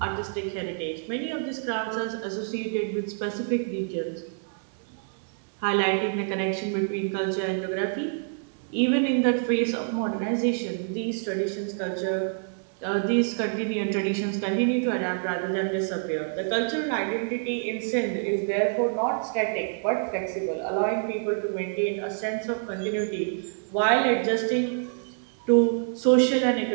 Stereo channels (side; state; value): left; silent; digital silence